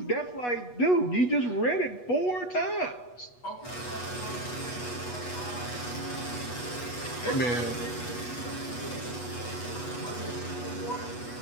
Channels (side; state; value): right; late; 8.2 ms